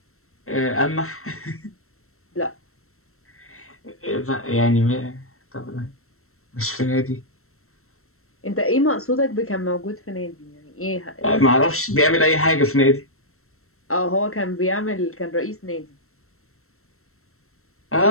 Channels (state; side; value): late; right; 0.63 ms